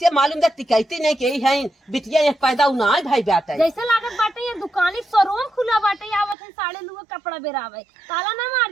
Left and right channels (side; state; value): left; drops out; at 6.4 s